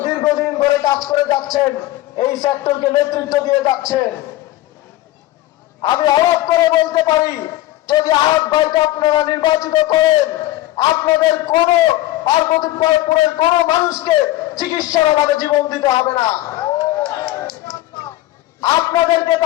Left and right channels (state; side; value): quieter; right; 15.9 dB